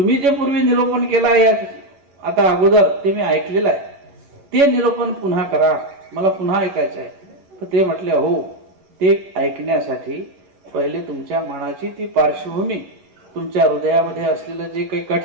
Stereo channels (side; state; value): left; late; 11 ms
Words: जे पूर्वी निरूपण केलं आहे आता अगोदर, ते मी ऐकलेलं आहे, ते निरूपण पुन्हा करा, मला पुन्हा ऐकायचं आहे. तर ते म्हटले, हो, ते ऐकण्यासाठी पहिले तुमच्या मनाची ती पार्श्वभूमी, तुमच्या हृदयामध्ये असलेलं जे काही